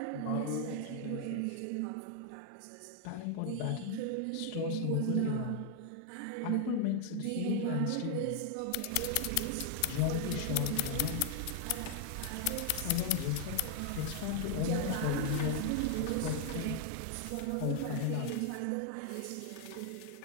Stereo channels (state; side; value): different; both; correlation 0.00